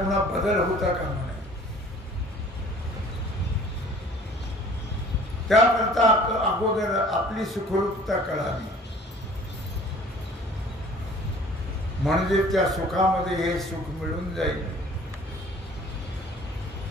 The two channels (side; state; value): both; normal; correlation 0.50